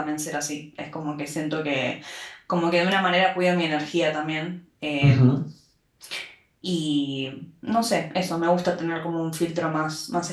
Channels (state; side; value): identical; both; correlation 1.00